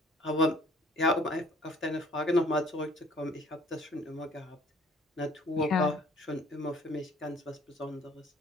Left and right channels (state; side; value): normal; both; correlation 0.56